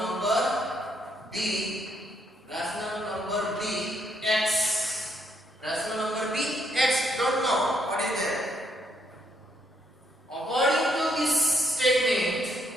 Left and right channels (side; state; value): both; normal; correlation 0.73